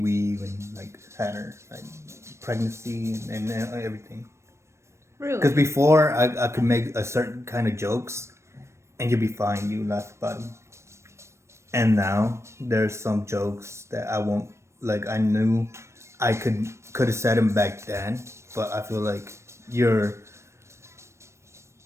like had her like pregnancy and everything. Because Really? before I could make a certain kind of jokes and you'd be fine, you laugh about them. And now there's some jokes that I won't like. I knew I could have said them back then, but I feel like you're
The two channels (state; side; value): late; left; 0.13 ms